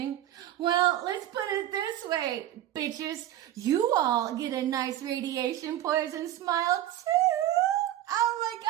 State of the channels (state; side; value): quieter; left; 13.0 dB